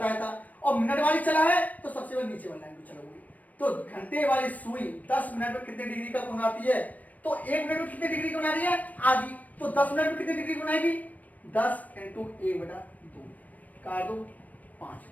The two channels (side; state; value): right; late; 0.075 ms